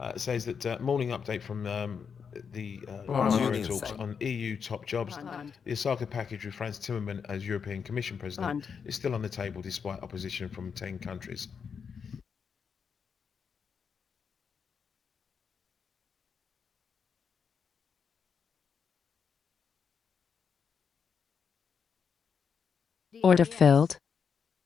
it says that morning update from the Bund. Euro Union talks side. on EU top jobs. Bund. The Osaka package with Franz Timmermans as European Commission President Bund. is still on the table despite opposition from 10 countries. Order DAX. filled.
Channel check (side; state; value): right; quieter; 6.5 dB